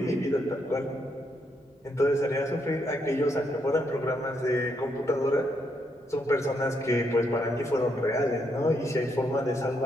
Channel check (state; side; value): normal; both; correlation 0.77